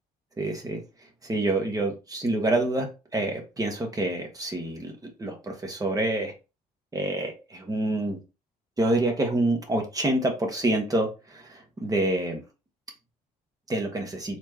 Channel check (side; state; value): both; normal; correlation 0.60